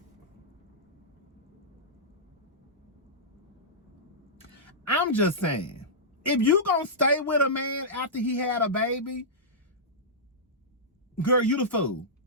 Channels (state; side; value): normal; both; correlation -0.14